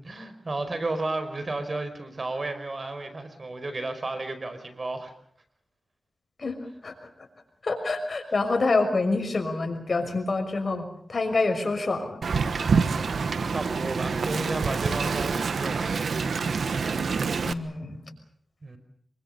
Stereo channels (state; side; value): normal; both; correlation 0.89